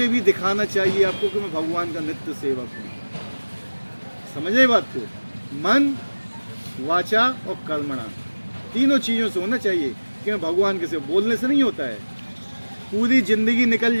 भी दिखाना चाहिए आपको कि मैं भगवान का नित्य सेवक हूँ। समझ रहे बात को? मन, वाचा और कर्मणा, तीनों चीज़ों से होना चाहिए कि मैं भगवान के सेवक। बोलने से नहीं होता है, पूरी जिंदगी निकल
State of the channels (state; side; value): inverted; both; correlation -1.00